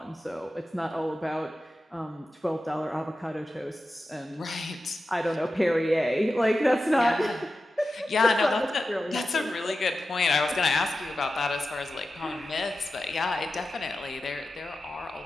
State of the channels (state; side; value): normal; both; correlation 0.92